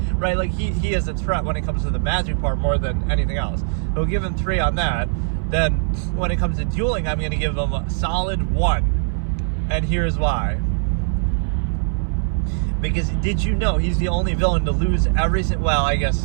right? Like he is a threat when it comes to the magic part more than anything else. We'll give him 3 on that. Then when it comes to dueling, I'm going to give him a solid 1, and here's why. Because did you know he's the only villain to lose every single, well, I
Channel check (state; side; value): silent; left; 62 dB below the other